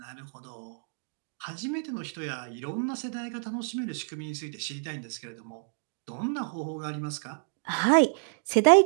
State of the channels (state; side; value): silent; left; digital silence